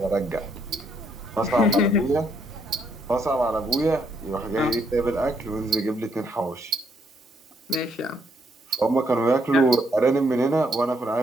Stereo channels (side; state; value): both; normal; correlation 0.73